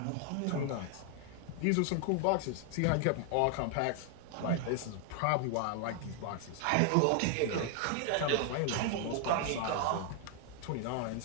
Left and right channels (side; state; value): both; different; correlation 0.00